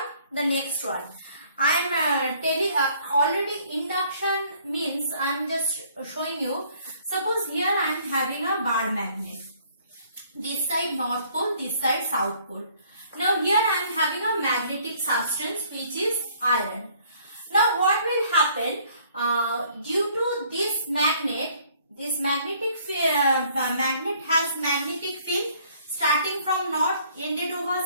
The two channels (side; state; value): both; inverted; correlation -0.61